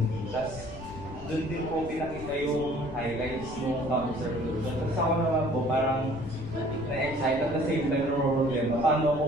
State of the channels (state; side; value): noise; left; rumble, 14 dB below the sound